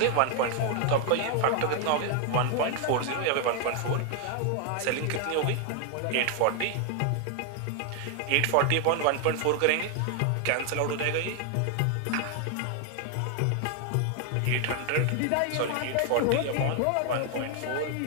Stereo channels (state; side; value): different; both; correlation 0.00